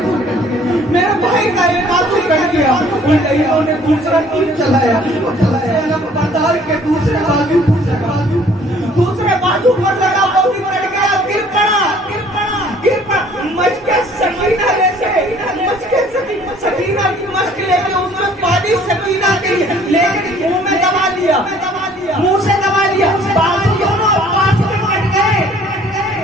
میرے بھائی کا ایک بازو کٹ گیا۔ ان لہیوں نے دوسرا تیر چلایا، بتاؤ کہ دوسرے بازو پر لگا، وہ بھی کٹ گیا، گر پڑا۔ مشق سکینہ لے کے، سکینہ کی مشق لے کے اس میں پانی سکینہ کے لیکن منہ میں دبا لیا، منہ سے دبا لیا، بازو دونوں پاس میں کٹ گئے،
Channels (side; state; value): both; normal; correlation 0.56